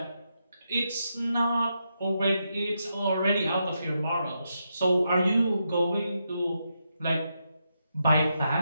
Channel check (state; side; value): inverted; both; correlation -0.83